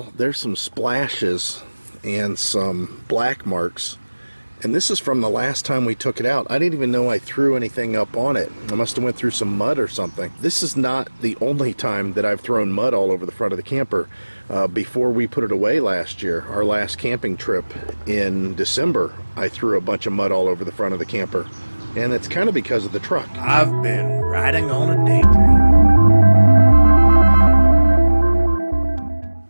there's some splashes and some black marks, and this is from the last time we took it out. I didn't even know I threw anything up on it. I must have went through some mud or something. This is not the only time that I've thrown mud all over the front of the camper. Before we put it away last year, our last camping trip in December, I threw a bunch of mud all over the front of the camper, and it's kind of because of the truck. I've been riding on a daydream.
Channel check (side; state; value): both; inverted; correlation -1.00